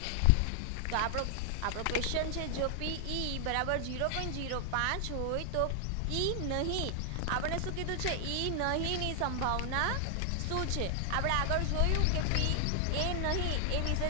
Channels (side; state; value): both; different; correlation 0.00